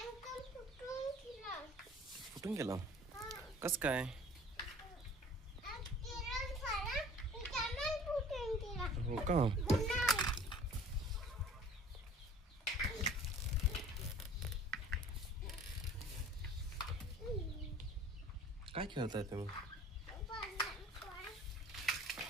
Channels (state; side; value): normal; both; correlation 0.48